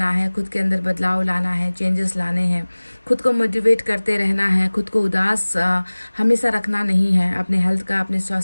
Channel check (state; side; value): inverted; both; correlation -1.00